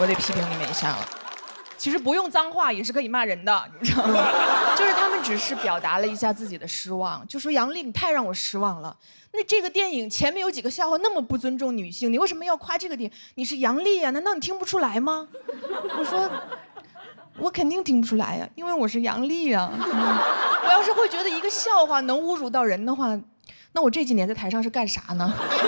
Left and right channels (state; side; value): inverted; both; correlation -1.00